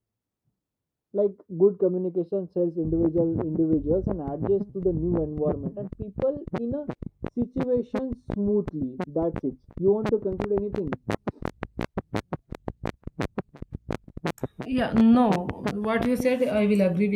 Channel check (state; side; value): identical; both; correlation 1.00